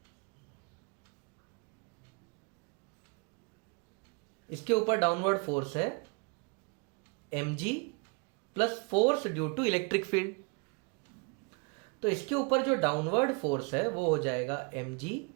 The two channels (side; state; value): left; quieter; 33.3 dB